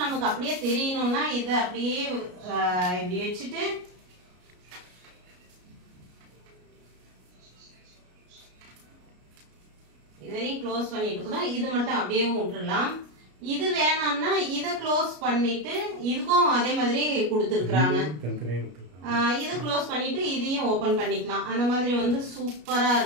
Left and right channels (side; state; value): left; late; 33 ms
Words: நமக்கு அப்படியே தெரியணும்னா இதை அப்படியே இப்படி வச்சுட்டு இதையும் க்ளோஸ் பண்ணிட்டு கூட இது மட்டும் அப்படியே விட்டுடலாம். இது வேணாம்னா இதை க்ளோஸ் பண்ணிட்டு இதுக்கும் அதே மாதிரி கொடுத்துருக்குறாங்க. இது க்ளோஸ் பண்ணிட்டு இதையும் ஓபன் பண்ணிக்கலாம். அந்த மாதிரி வந்து சூப்பரா